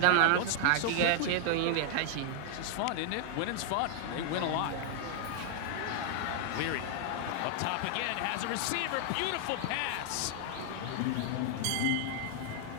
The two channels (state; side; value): different; both; correlation 0.00